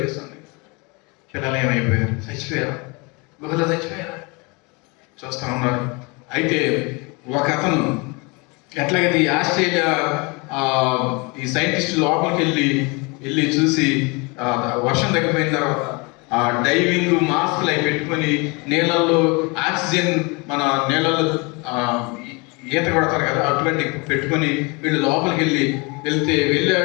పిల్లలు ఏమైపోయారు? చచ్చిపోయారు, గుహలో చచ్చిపోయారు. చూస్తూ ఉన్నారు. అయితే ఒక అతను ఎట్లాగైతే ఈ ఆస్ట్రేలియా ఈ సైంటిస్ట్ లోపలికి వెళ్ళి చూసి వర్షం తగ్గిపోయిన తర్వాత డైవింగ్ మాస్క్లు అవి పెట్టుకొని నీళ్ళల్లో ఆక్సిజన్, మన నీళ్ళల్లో ఈత కొడతారు కదా, అటువంటి పెట్టుకొని వీళ్ళు లోపలికి వెళ్ళాడు.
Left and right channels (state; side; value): quieter; right; 28.7 dB